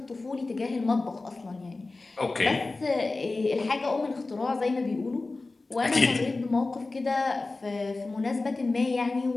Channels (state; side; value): quieter; right; 3.4 dB